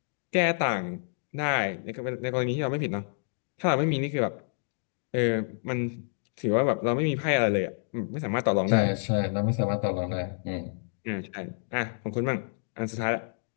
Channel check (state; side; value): silent; right; digital silence